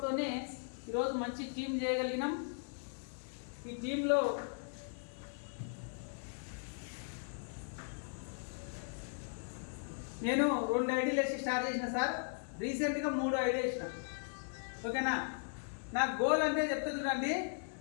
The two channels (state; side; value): silent; right; digital silence